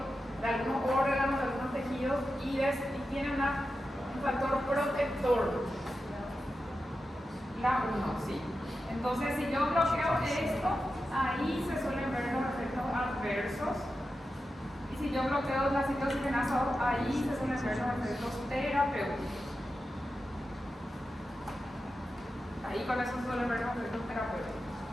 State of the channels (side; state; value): both; normal; correlation 0.91